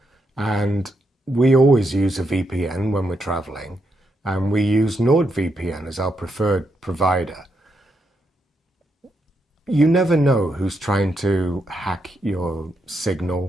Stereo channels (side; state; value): both; normal; correlation 0.81